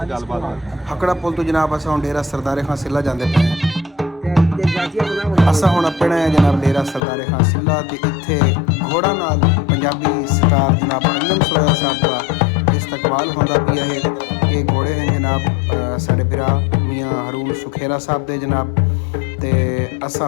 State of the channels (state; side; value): drops out; right; at 7.0 s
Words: गलबात। हकड़ा पुल तो जनाब असां हुण डेरा सरदारे खां सिल्ला जांदे पे असां हुण अपने जनाब डेरा सरदारे खां सिल्ला ते इत्थे घोड़ा नाल पंजाबी स्टार जनाब अंजम सरोया साहब का इस्तकबाल होंदा पिया है। ये घोड़े हैं जनाब साढ़े भरा मियाँ रून सुखेरा साहब दे जनाब ते असां